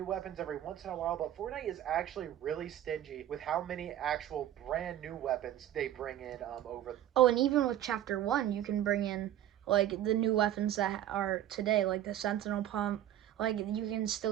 weapons every once in a while, but Fortnite is actually really stingy with how many actual brand new weapons they bring in over... Oh, and even with Chapter 1, you can bring in like the new weapons that are today, like the Sentinel Pump. Like you can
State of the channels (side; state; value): left; quieter; 12.0 dB